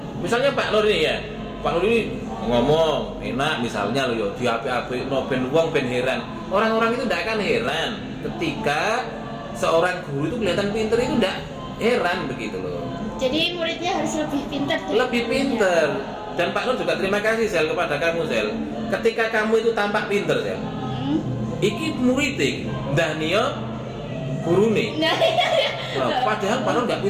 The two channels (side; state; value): both; identical; correlation 1.00